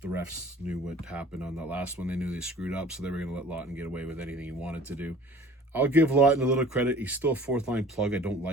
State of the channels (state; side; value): normal; both; correlation 0.47